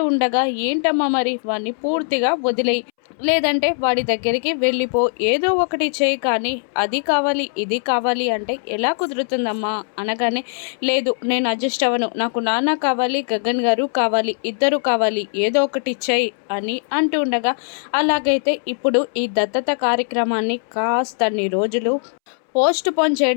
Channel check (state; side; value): silent; right; 66 dB below the other